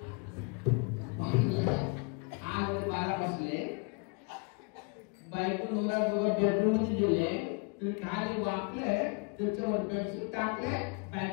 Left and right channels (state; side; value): quieter; right; 34.0 dB